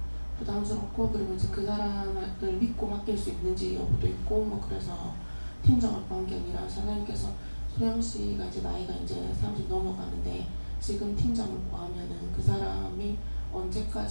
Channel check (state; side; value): inverted; both; correlation -1.00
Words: 부담스럽고 그리고 이제 그 사람을 믿고 맡길 수 있는지 여부도 있고 뭐 그래서 팀장을 구한 게 아니라 사장님께서 소영씨가 이제 나이가 이제 30 넘어가는데 지금 팀장을 구하면은 그 사람이